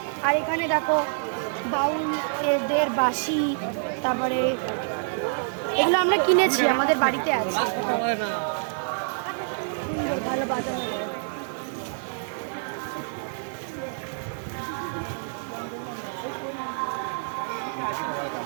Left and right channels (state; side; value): silent; left; 60 dB below the other